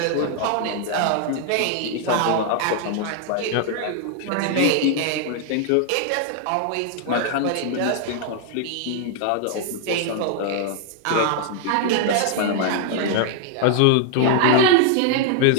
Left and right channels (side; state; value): both; different; correlation 0.00